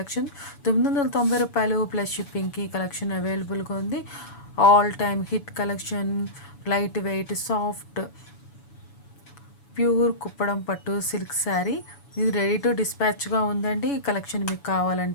రూ. 990 ప్లస్ షిప్పింగ్కి కలెక్షన్ అవైలబుల్గా ఉంది. All time hit collection, light weight soft pure Kuppadam పట్టు సిల్క్ శారీ. ఇది రెడీ టు డిస్పాచ్గా ఉందండి. ఈ కలెక్షన్ మీకు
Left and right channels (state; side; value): late; right; 7.1 ms